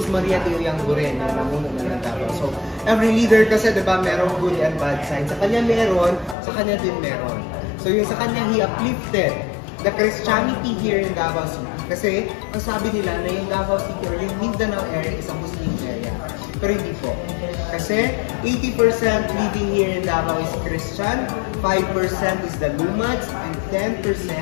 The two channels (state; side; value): drops out; right; at 6.4 s